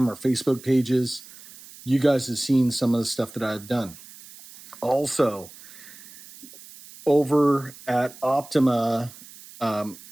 or Facebook pages, you guys have seen some of the stuff that I've done. Also, over at Optima,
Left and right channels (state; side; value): noise; right; hiss, 19 dB below the sound